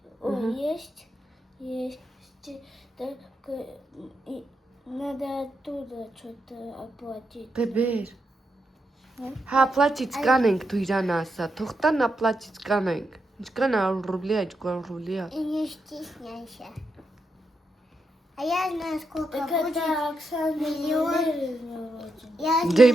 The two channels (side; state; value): both; normal; correlation 0.84